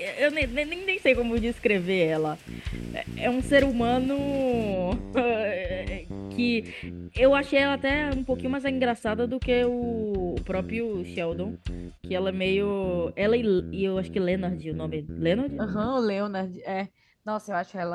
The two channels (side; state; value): both; identical; correlation 1.00